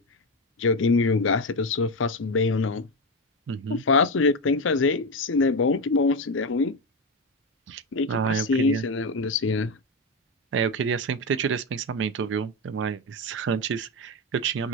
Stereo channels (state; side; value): normal; both; correlation 0.14